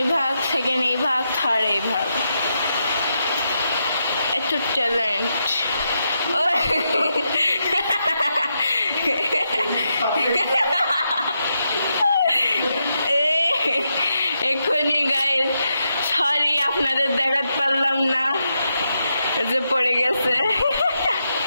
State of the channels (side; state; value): both; inverted; correlation -0.84